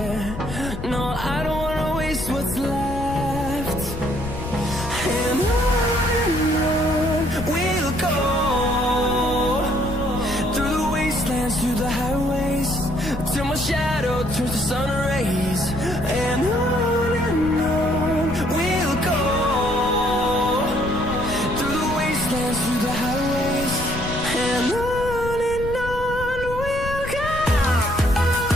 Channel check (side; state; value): left; noise; rumble, 8 dB below the sound